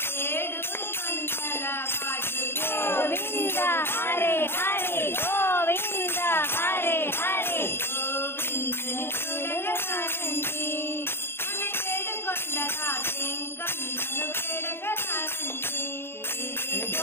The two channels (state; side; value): late; right; 0.11 ms